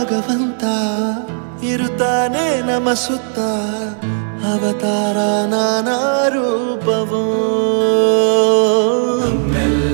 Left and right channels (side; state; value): left; silent; digital silence